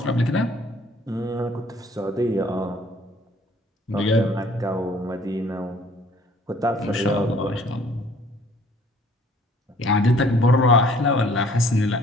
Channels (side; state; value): both; normal; correlation 0.57